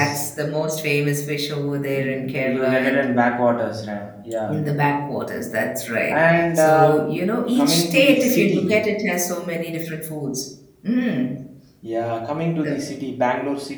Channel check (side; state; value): both; identical; correlation 1.00